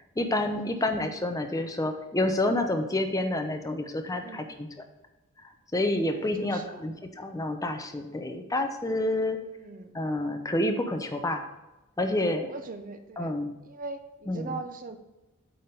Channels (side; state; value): both; normal; correlation 0.54